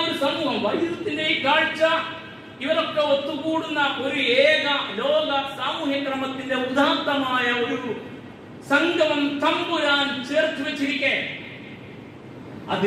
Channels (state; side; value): identical; both; correlation 1.00